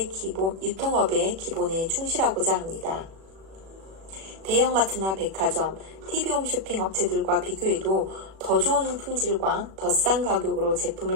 기본에 충실하고자 합니다. 대형마트나 백화점, TV홈 쇼핑 업체들과 비교해도 더 좋은 품질과 더 싼 가격으로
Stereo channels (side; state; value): left; late; 36 ms